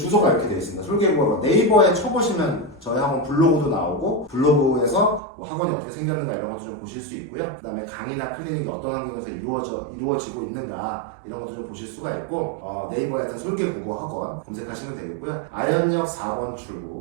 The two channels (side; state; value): left; drops out; at 5.2 s